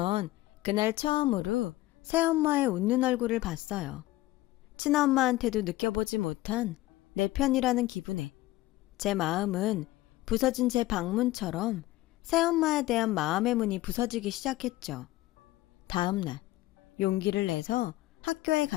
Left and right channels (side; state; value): right; quieter; 17.5 dB